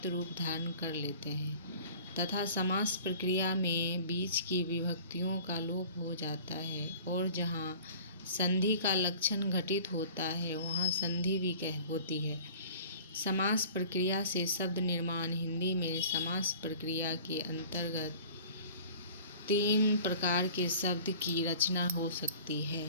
रूप धारण कर लेते हैं तथा समास प्रक्रिया में बीच की विभक्तियों का लोप हो जाता है, और जहाँ संधि का लक्षण घटित होता है वहाँ संधि भी होती है। समास प्रक्रिया से शब्द निर्माण। हिंदी में समास प्रक्रिया के अंतर्गत 3 प्रकार के शब्द की रचना हो सकती है।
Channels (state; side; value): inverted; both; correlation -0.44